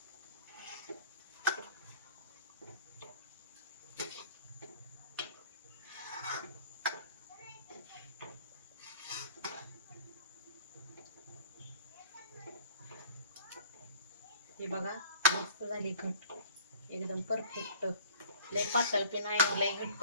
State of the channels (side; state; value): both; inverted; correlation -0.50